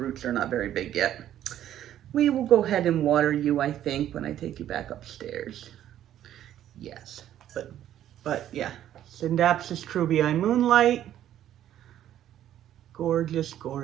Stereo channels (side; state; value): left; quieter; 11.6 dB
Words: are not very big yet. We will go ahead and water you, I think, when I take you back upstairs. Yes, but yeah, Syngonium Moonlight. Gorgeous,